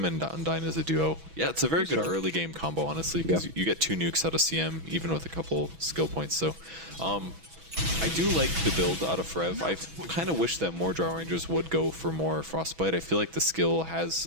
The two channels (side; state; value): left; late; 6.1 ms